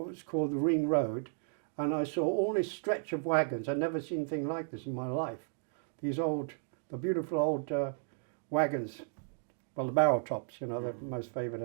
was called the Ring Road, and I saw all this stretch of wagons. I'd never seen anything like this in my life. The beautiful old wagons, well, the barrel tops, you know, they're most favoured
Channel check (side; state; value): left; silent; digital silence